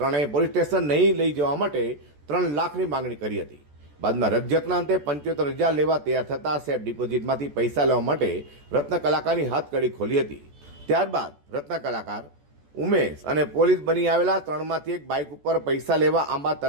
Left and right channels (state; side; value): late; left; 14 ms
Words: ત્રણેય પોલીસ સ્ટેશન નહીં લઈ જવા માટે 3 લાખની માંગણી કરી હતી. બાદમાં રકઝકના અંતે 75,000 લેવા તૈયાર થતા સેફ ડિપોઝિટમાંથી પૈસા લેવા માટે રત્ન કલાકારની હાથકડી ખોલી હતી. ત્યારબાદ રત્ન કલાકાર ઉમેશ અને પોલીસ બની આવેલા 3માંથી એક બાઇક ઉપર પૈસા લેવા આંબા